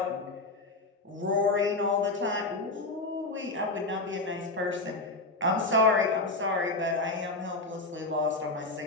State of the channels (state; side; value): quieter; right; 3.1 dB